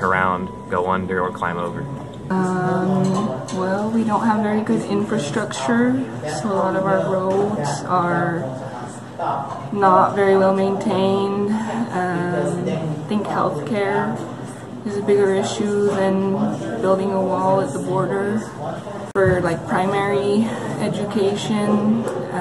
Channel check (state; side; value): identical; both; correlation 1.00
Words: around, go under, or climb over. Well, we don't have very good infrastructure, so a lot of our roads are not very well maintained. I think healthcare is a bigger issue than building a wall at the border. For like primary education,